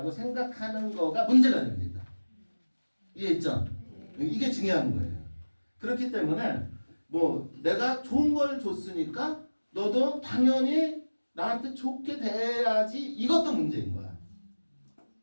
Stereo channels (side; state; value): both; inverted; correlation -1.00